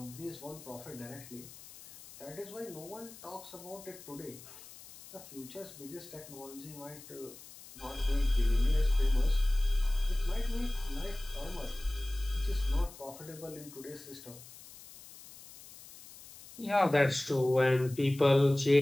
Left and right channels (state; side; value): noise; left; hiss, 18 dB below the sound